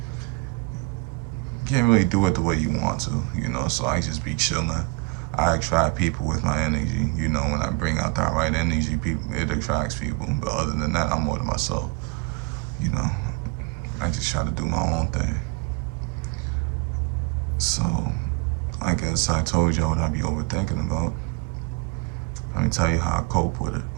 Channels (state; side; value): quieter; left; 26.1 dB